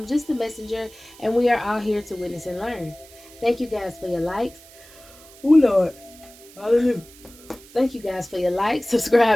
just a messenger, and we are all here to witness and learn. Thank you guys for your likes. Oh Lord, hallelujah. Thank you guys for your likes,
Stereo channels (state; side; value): noise; right; hiss, 22 dB below the sound